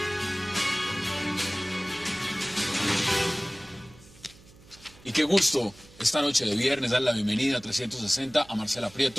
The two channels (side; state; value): right; noise; hum, 24 dB below the sound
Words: Y qué gusto esta noche de viernes dar la bienvenida a 360 a Marcela